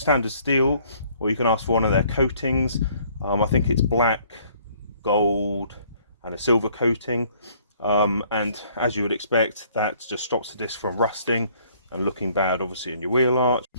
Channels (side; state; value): both; inverted; correlation -0.60